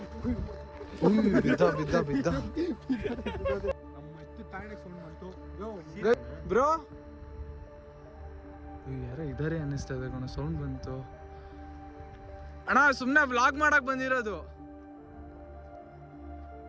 ಬಿದ್ದ ಬಿದ್ದ ಬಿದ್ದ ನಮ್ಮ ಎಷ್ಟು ತಾಯಿಗೆ ಸೌಂಡ್ ಬಂತು ಬ್ರೋ ಯಾರೋ ಇದಾರೆ ಅನ್ನಿಸ್ತಾ ಇದೆ ಕಣ, ಸೌಂಡ್ ಬಂತು ಅಣ್ಣ. ಸುಮ್ನೆ ವ್ಲಾಗ್ ಮಾಡಕ್ ಬಂದಿರೋದು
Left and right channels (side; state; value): both; identical; correlation 1.00